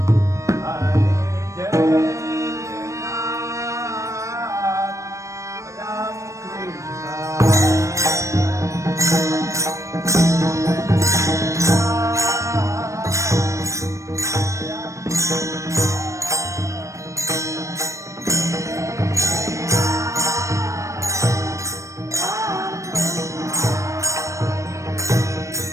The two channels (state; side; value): late; left; 0.15 ms